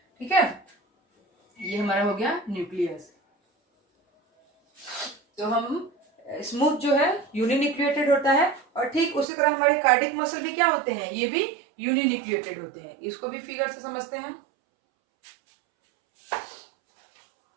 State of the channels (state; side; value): drops out; left; at 9.2 s